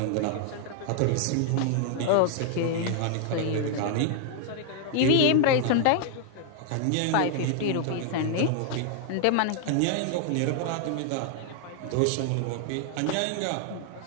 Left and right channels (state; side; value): different; both; correlation 0.00